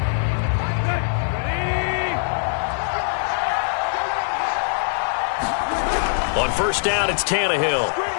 On 1st down, it's Tannehill.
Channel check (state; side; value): silent; right; 64 dB below the other